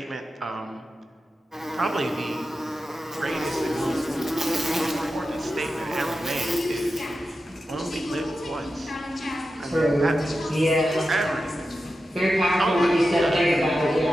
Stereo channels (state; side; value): normal; both; correlation 0.91